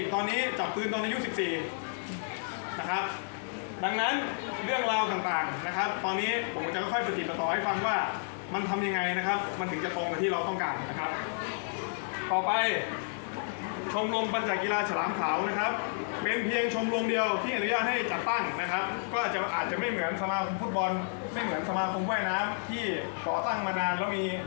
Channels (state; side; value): silent; right; digital silence